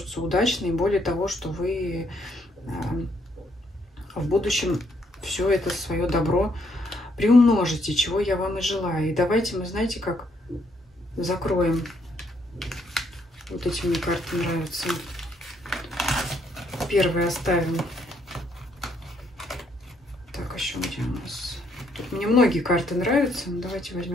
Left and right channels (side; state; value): both; normal; correlation 0.71